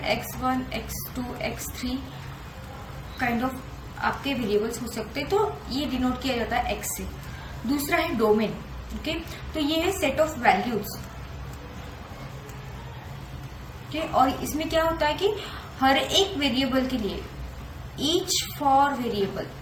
x1, x2, x3 kind of आपके वेरिएबल्स हो सकते हैं, तो ये डिनोट किया जाता है x से. दूसरा है डोमेन. ओके, तो ये है सेट ऑफ वैल्यूज. और इसमें क्या होता है कि हर एक वेरिएबल के लिए, ईच फॉर वेरिएबल,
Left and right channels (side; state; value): both; identical; correlation 1.00